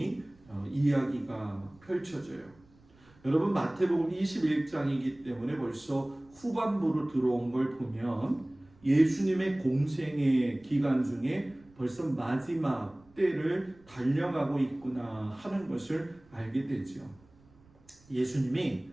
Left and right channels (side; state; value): right; noise; rumble, 28 dB below the sound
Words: 이야기가 펼쳐져요. 여러분 마태복음 21장이기 때문에 벌써 후반부로 들어온 걸 보면 예수님의 공생의 기간 중에 벌써 마지막 때를 달려가고 있구나 하는 것을 알게 되죠. 예수님이